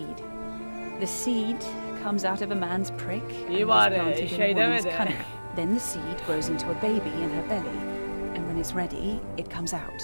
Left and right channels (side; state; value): both; inverted; correlation -1.00